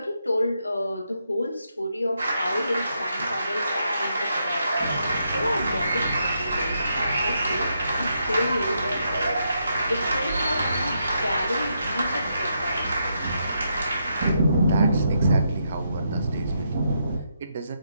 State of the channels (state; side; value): inverted; both; correlation -0.80